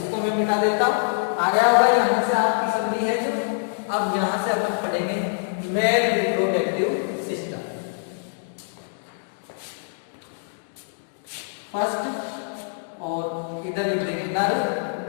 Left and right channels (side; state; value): right; silent; digital silence